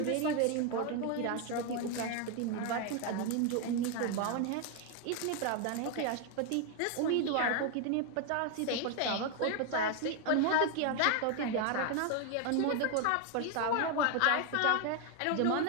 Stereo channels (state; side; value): different; both; correlation 0.01